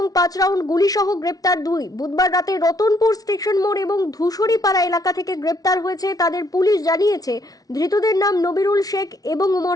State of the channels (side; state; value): right; late; 0.18 ms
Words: 5 রাউন্ড গুলি সহ গ্রেপ্তার 2। বুধবার রাতে রতনপুর স্টেশন মোড় এবং ধূসুরিপাড়া এলাকা থেকে গ্রেপ্তার হয়েছে তাদের। পুলিশ জানিয়েছে ধৃতদের নাম নবিরুল শেখ এবং